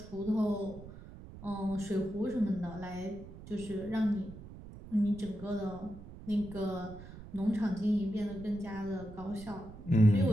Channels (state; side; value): noise; right; rumble, 15 dB below the sound